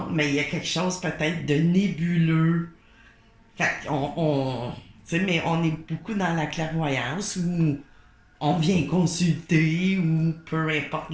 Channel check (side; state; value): both; identical; correlation 1.00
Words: mais il y a quelque chose peut-être de nébuleux. Fait qu'on. Tu sais, mais on est beaucoup dans la clairvoyance où on vient consulter ou peu importe